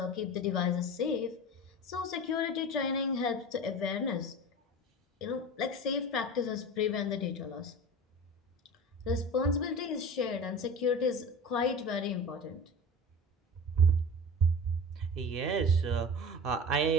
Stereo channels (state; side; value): normal; both; correlation 0.33